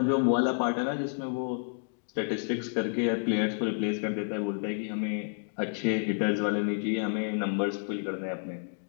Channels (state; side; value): silent; right; digital silence